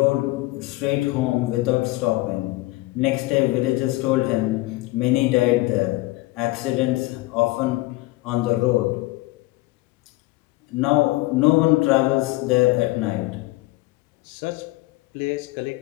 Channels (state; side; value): quieter; right; 20.3 dB